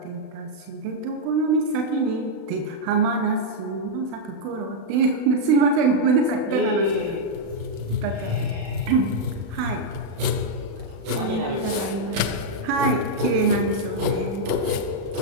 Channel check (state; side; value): late; left; 36 ms